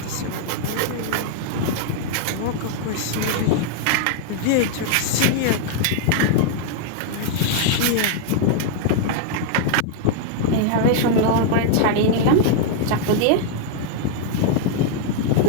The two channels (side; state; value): both; different; correlation 0.00